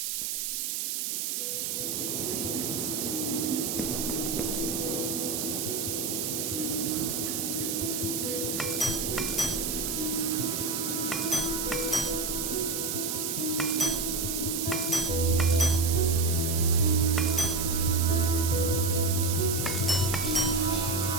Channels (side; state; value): right; noise; hiss, 1 dB below the sound